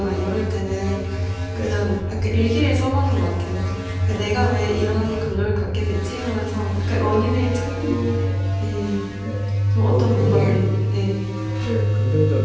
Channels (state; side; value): identical; both; correlation 1.00